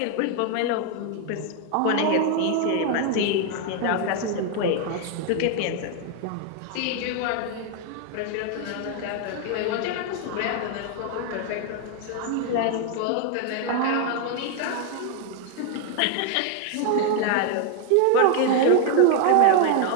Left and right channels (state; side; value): different; both; correlation 0.01